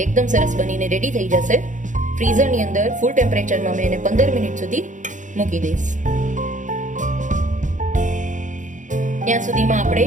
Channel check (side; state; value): left; late; 0.36 ms